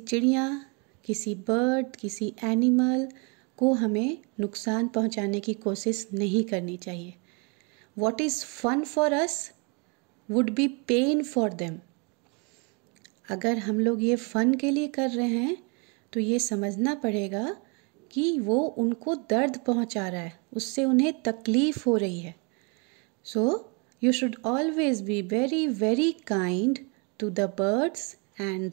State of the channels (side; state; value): left; quieter; 33.5 dB